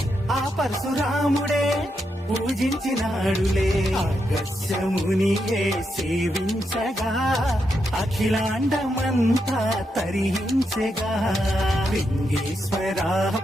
ఆ పరశురాముడే పూజించినాడులే అగస్యమునియే సేవించగా అఖిలాండమంతా తరించగా లింగేశ్వర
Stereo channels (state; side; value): normal; both; correlation 0.83